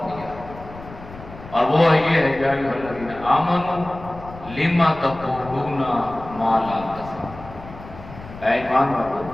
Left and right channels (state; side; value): noise; left; rumble, 16 dB below the sound